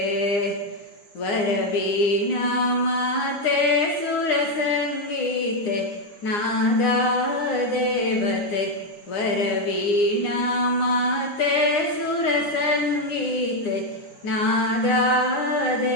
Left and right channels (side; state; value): right; late; 9.7 ms